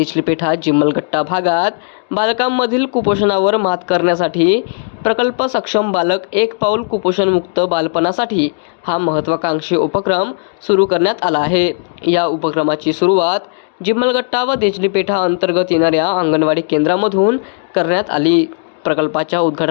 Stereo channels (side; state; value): right; silent; digital silence